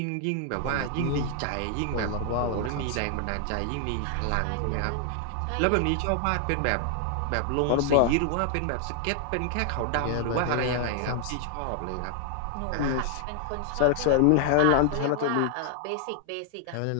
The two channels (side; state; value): both; different; correlation 0.00